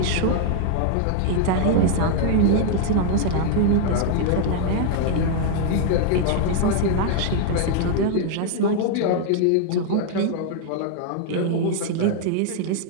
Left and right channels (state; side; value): different; both; correlation 0.00